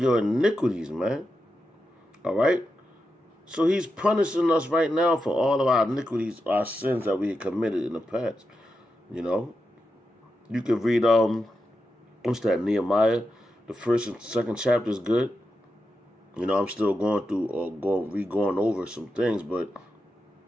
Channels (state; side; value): normal; both; correlation 0.88